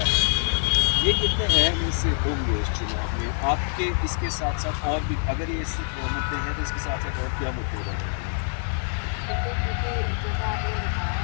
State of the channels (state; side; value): silent; right; digital silence